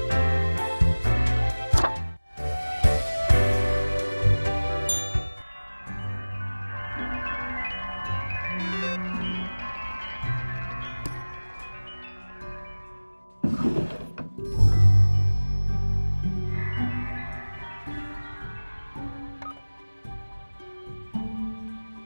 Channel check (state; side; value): inverted; both; correlation -1.00